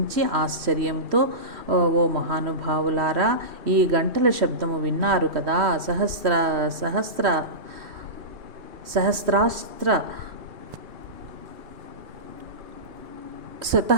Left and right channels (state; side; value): late; left; 3.1 ms